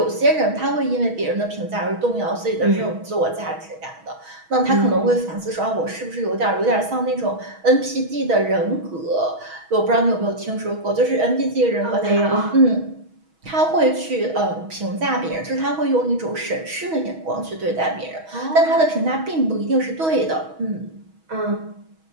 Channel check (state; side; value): late; left; 6.3 ms